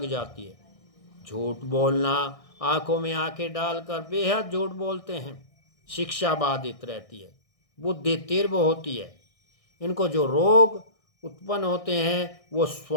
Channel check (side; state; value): right; late; 1.6 ms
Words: जाती है। झूठ बोलना, आंखों में आंखें डालकर बेहद झूठ बोलते हैं। शिक्षा बाधित रहती है, बुद्धि तीव्र होती है। इनको जो रोग उत्पन्न होते हैं वो